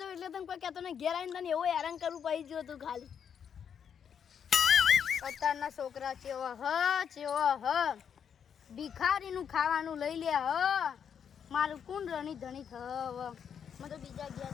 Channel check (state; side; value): quieter; right; 7.8 dB